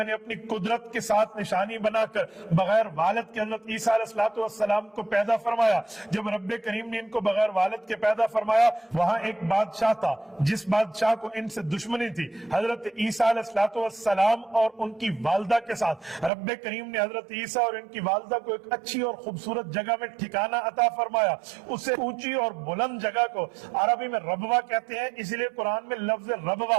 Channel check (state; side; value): drops out; left; at 16.3 s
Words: نے اپنی قدرت کے ساتھ نشانی بنا کر بغیر والد کے حضرت عیسیٰ علیہ السلام کو پیدا فرمایا۔ جب رب کریم نے ان کو بغیر والد کے پیدا فرمایا، وہاں ایک بادشاہ تھا جس بادشاہ کو ان سے دشمنی تھی۔ حضرت عیسیٰ علیہ السلام اور ان کی والدہ کے ساتھ رب کریم نے حضرت عیسیٰ اور ان کی والدہ کو ایک اچھی اور خوبصورت جگہ میں ٹھکانہ عطا فرمایا۔ اسے اونچی اور بلند جگہ کو عربی میں ربوہ کہتے ہیں، اس لیے قرآن میں لفظ